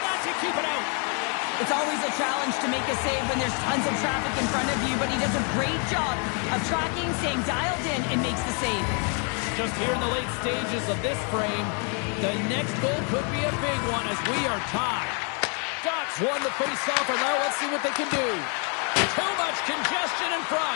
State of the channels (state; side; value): quieter; right; 38.1 dB